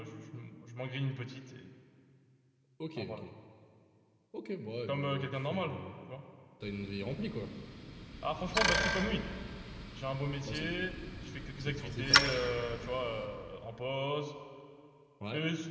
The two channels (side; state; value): both; identical; correlation 1.00